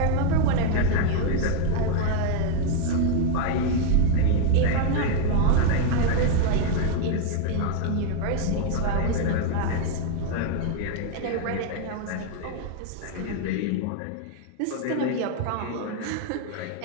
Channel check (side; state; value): both; different; correlation 0.00